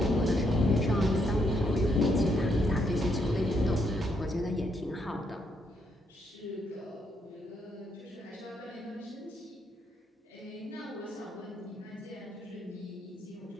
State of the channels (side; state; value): both; normal; correlation 0.76